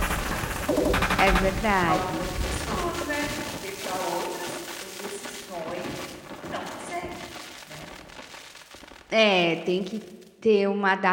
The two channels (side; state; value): both; identical; correlation 1.00